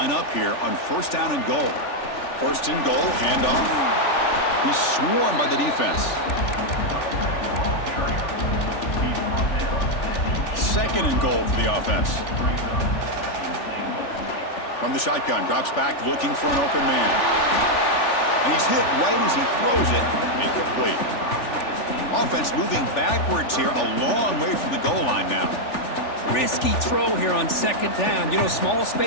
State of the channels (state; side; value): late; right; 3.4 ms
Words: up here on first down and goal. First and goal, handoff. He's swarmed by the defense. Second and goal for the offense. From the shotgun, drops back looking for an open man. And he's hit right as he throws it. Incomplete. Offense moving backwards here, a long way from the goal line now. Risky throw here on 2nd down. You know, small